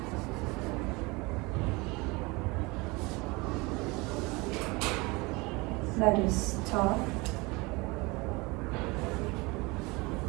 That is top.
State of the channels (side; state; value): left; quieter; 25.0 dB